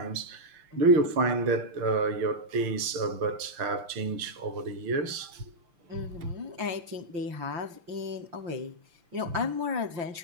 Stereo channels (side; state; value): left; late; 5.9 ms